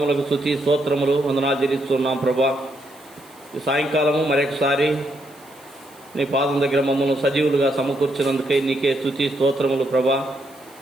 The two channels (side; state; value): right; noise; hiss, 26 dB below the sound